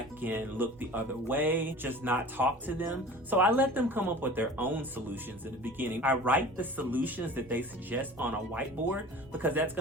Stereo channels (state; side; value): normal; both; correlation 0.40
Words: can look the other way, just not talk to them. So I let them come up with their own solutions in the beginning. I write the solutions that they suggest on a whiteboard because that's